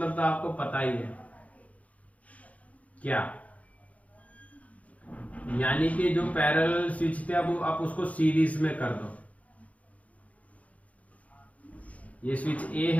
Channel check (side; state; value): right; late; 0.068 ms